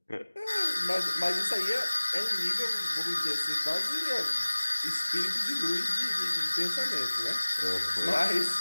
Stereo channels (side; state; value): both; inverted; correlation -1.00